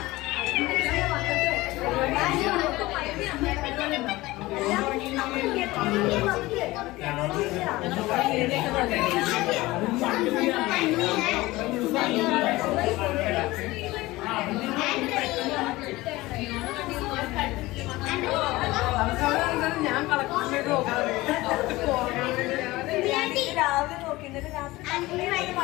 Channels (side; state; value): right; quieter; 19.4 dB